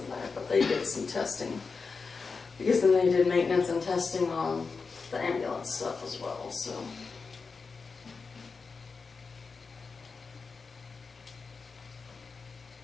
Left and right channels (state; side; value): quieter; right; 4.7 dB